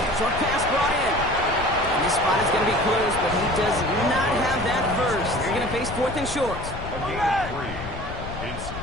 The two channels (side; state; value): left; noise; rumble, 10 dB below the sound